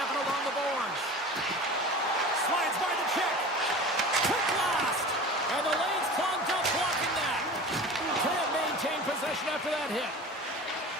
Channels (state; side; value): normal; both; correlation 0.36